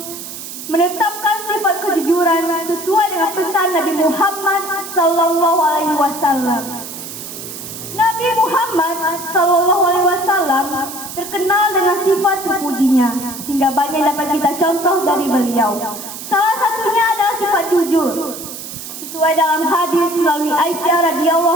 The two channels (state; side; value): noise; right; hiss, 10 dB below the sound